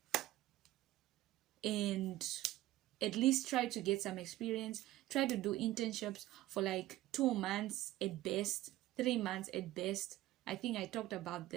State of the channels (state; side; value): quieter; left; 15.5 dB